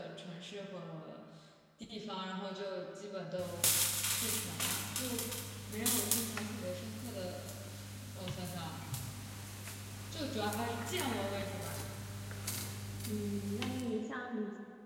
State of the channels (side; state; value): both; identical; correlation 1.00